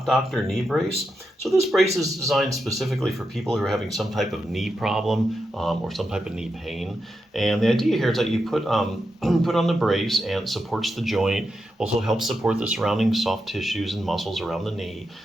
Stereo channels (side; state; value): both; normal; correlation 0.86